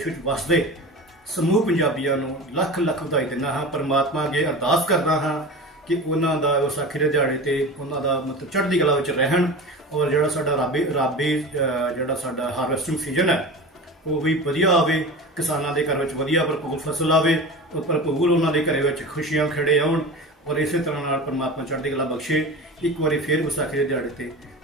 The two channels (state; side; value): normal; both; correlation 0.31